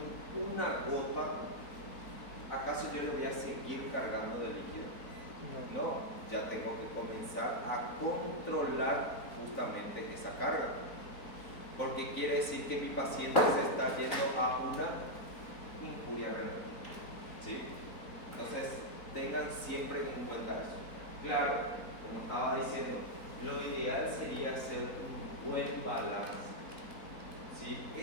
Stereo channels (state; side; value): late; right; 4.2 ms